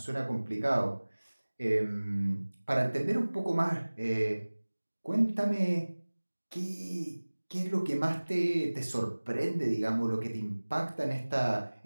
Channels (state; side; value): inverted; both; correlation -1.00